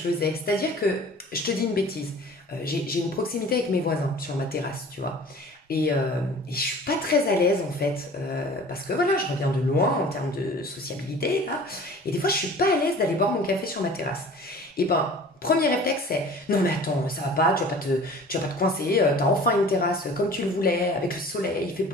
C'est-à-dire que, je te dis une bêtise, j'ai une proximité avec mes voisins sur ma terrasse, tu vois. Et je suis pas très à l'aise, en fait, parce que voilà, je reviens de loin en termes de sociabilité, là. Et des fois, je suis pas à l'aise d'aller boire mon café sur ma terrasse. Et ben, premier réflexe, c'est non, mais attends, ça va pas, tu vas pas te coincer, t'as enfin une terrasse comme tu le voulais, avec le soleil, il fait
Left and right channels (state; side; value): normal; both; correlation 0.44